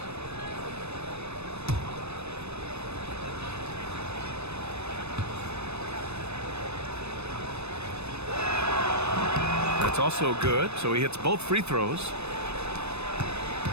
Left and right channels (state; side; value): late; left; 0.80 ms